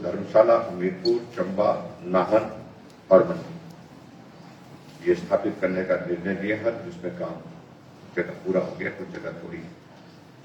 धर्मशाला, हमीरपुर, चंबा, नाहन और मंडी ये स्थापित करने का निर्णय लिया है, जिसमें काम जगह पूरा हो गया, कुछ जगह थोड़ी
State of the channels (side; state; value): both; identical; correlation 1.00